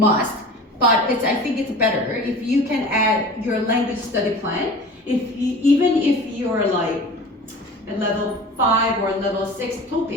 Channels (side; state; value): both; normal; correlation 0.39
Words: but I think it's better if you can add your language study plan. Even if you're like a level 5 or level 6